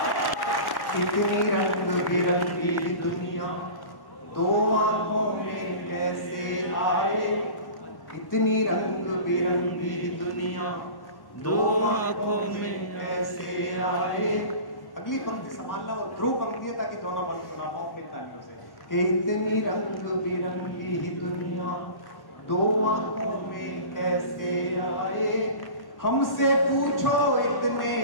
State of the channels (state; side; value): late; right; 1.1 ms